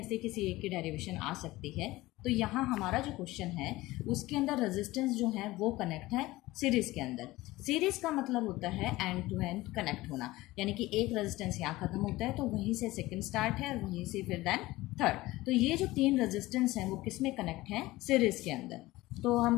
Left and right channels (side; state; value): right; quieter; 18.7 dB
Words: से किसी एक की डेरिवेशन आ सकती है। तो यहाँ हमारा जो क्वेश्चन है उसके अंदर रेजिस्टेंस जो है वो कनेक्ट है सीरीज के अंदर। सीरीज का मतलब होता है एंड टू एंड कनेक्ट होना, यानी कि एक रेजिस्टेंस यहाँ खत्म होता है तो वहीं से सेकंड स्टार्ट है और वहीं से फिर देन थर्ड। तो ये जो 3 रेजिस्टेंस हैं वो किस में कनेक्ट हैं? सीरीज के अंदर। तो